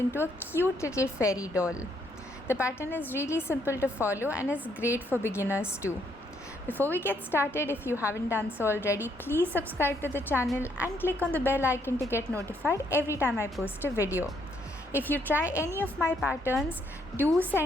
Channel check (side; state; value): both; normal; correlation 0.72